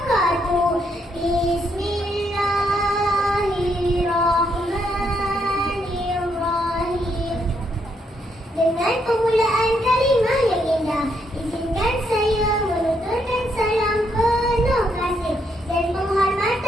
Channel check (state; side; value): normal; both; correlation 0.76